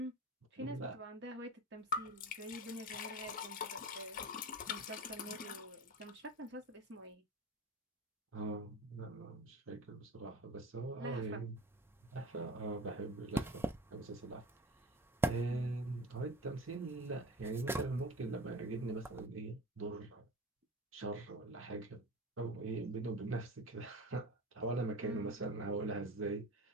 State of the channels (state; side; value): normal; both; correlation 0.34